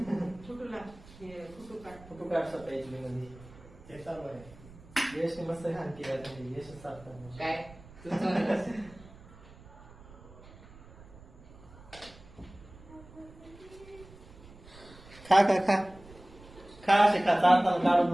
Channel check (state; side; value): noise; right; rumble, 21 dB below the sound